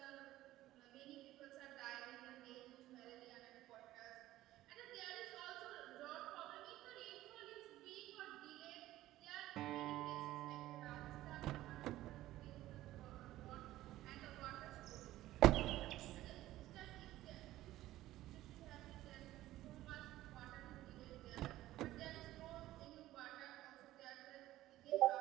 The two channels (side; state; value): left; quieter; 15.3 dB